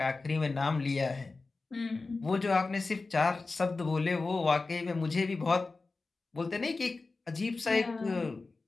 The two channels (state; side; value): quieter; right; 3.8 dB